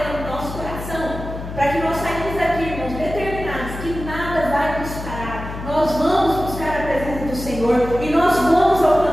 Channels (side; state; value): left; noise; hum, 9 dB below the sound